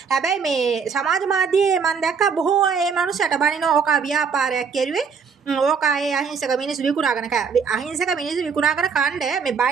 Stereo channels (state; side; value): quieter; left; 6.0 dB